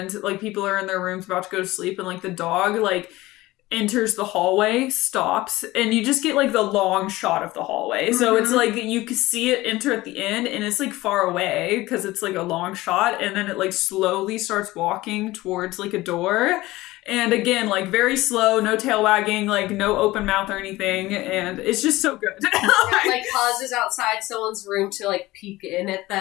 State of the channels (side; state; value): right; quieter; 18.6 dB